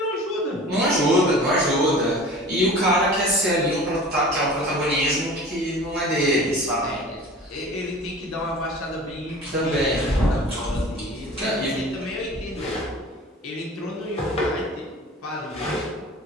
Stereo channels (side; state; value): both; normal; correlation 0.41